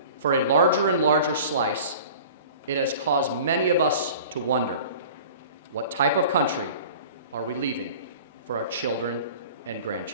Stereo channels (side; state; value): both; inverted; correlation -0.42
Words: for a larger and larger slice, it has caused many of us to wonder, what type of country are we leaving for our children and